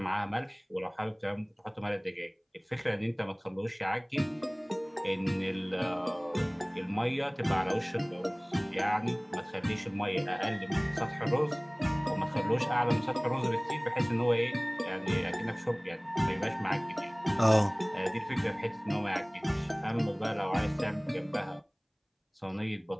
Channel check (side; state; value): both; identical; correlation 1.00